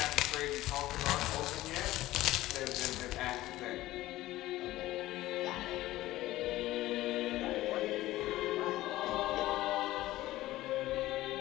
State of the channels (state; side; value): quieter; right; 16.3 dB